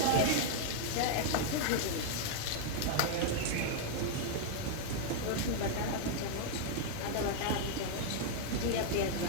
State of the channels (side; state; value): both; different; correlation 0.00